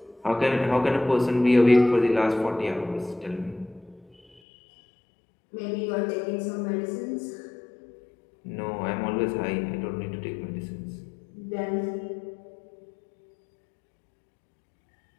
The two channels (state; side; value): drops out; right; at 4.4 s